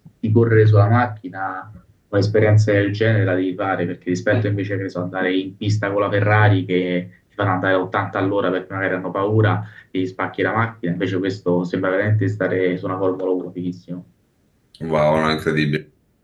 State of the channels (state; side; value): identical; both; correlation 1.00